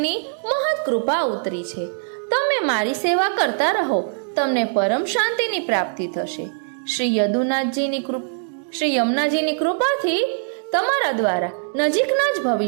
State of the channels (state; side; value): silent; left; digital silence